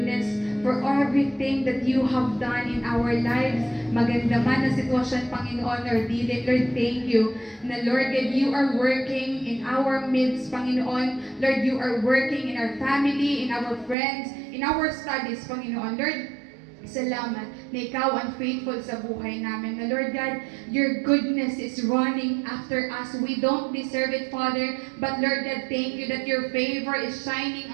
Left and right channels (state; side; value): drops out; left; at 14.0 s